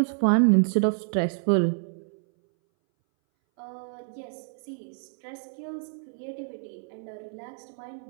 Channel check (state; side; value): silent; left; 59 dB below the other